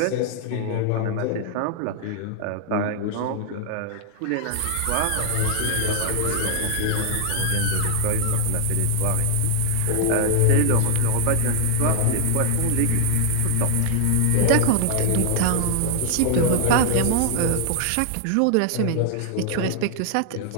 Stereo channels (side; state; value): both; different; correlation 0.00